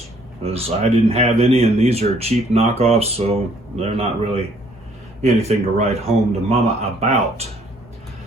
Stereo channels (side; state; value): both; normal; correlation 0.62